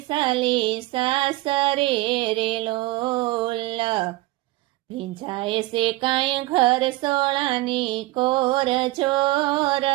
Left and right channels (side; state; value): left; quieter; 19.1 dB